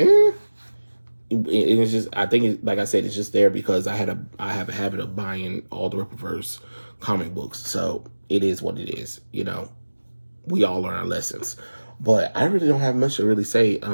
just, I think like I said, it's just there because I have a habit of buying all the Rippaverse comic books, so it is what it is. We all learn our lessons, but I really don't have much to really say.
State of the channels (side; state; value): both; inverted; correlation -1.00